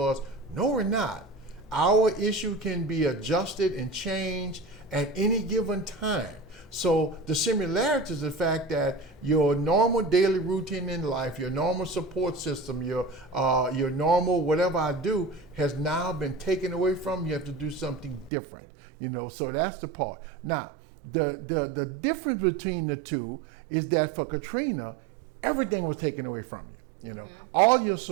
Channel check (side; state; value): left; drops out; at 18.3 s